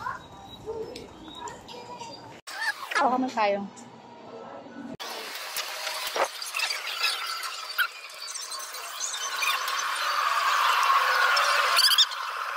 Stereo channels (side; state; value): both; identical; correlation 1.00